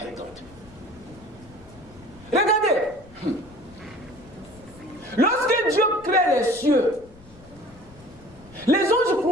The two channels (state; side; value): noise; left; rumble, 23 dB below the sound